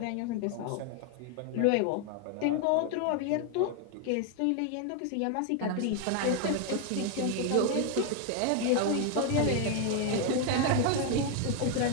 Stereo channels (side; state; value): both; different; correlation 0.01